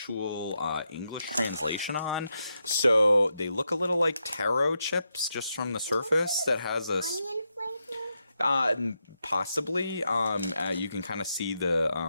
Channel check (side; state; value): both; inverted; correlation -0.84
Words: English translation on, so they look a little like taro chips just from the surface. That has a onion flavor. Possibly. You can kind of see the